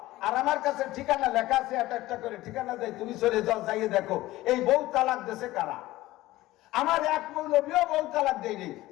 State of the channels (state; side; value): quieter; right; 17.2 dB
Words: আর আমার কাছে ঠিকানা লেখা আছে, একটা করে ঠিকানা দেয়, তুমি চলে যাও, যাইয়ে দেখো এই বউ তালাক দেশে কারা। আমার এক মৌলবীও বউ তালাক দেয়নি।